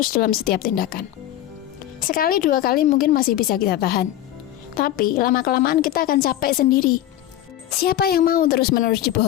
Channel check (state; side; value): quieter; right; 12.9 dB